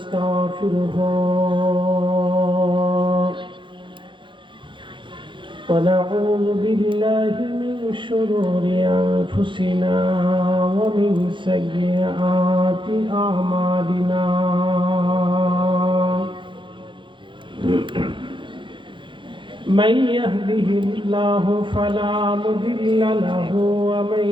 ونعوذ بالله من شرور أنفسنا ومن سيئات أعمالنا من يهده الله فلا مضل له ومن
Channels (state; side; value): late; left; 0.23 ms